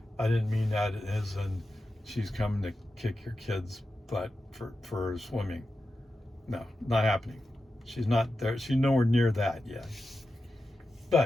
I didn't mean that as in she's coming to kick your kid's butt for swimming. No, not happening. She's not there. She's nowhere near that yet.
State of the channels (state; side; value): normal; both; correlation 0.91